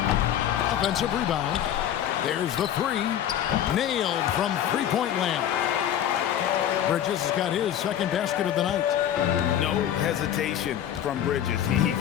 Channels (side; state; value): right; quieter; 10.6 dB